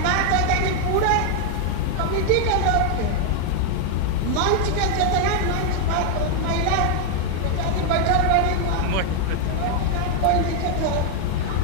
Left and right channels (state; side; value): different; both; correlation 0.00